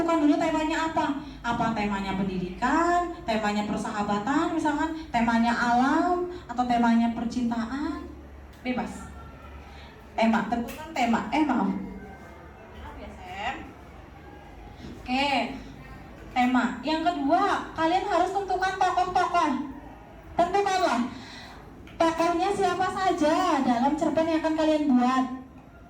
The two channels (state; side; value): identical; both; correlation 1.00